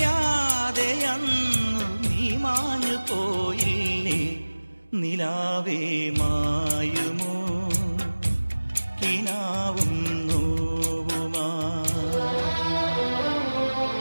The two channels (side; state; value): both; inverted; correlation -1.00